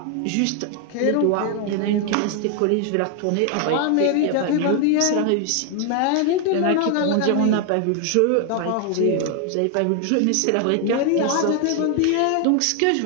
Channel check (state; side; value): different; both; correlation 0.00